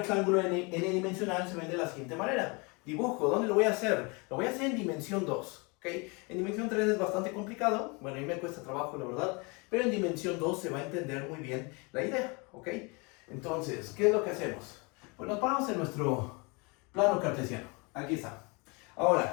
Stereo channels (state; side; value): quieter; right; 29.5 dB